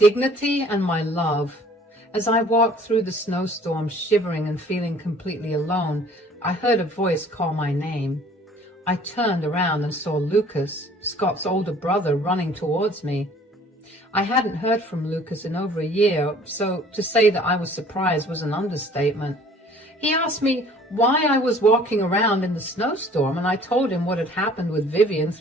and my love. As I walked through the snowstorm, shivering and feeling completely alone, I heard a voice call my name. I turned around and saw Lucas, Scott's older brother, running towards me. I hadn't heard from Lucas in over a year, so to say that I was surprised was an understatement. He asked me why I was walking around in the snowstorm, and I told him what had happened with Vivian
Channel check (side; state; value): both; normal; correlation 0.53